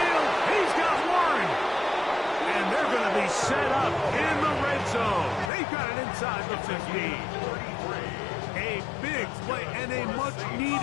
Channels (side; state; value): right; drops out; at 5.5 s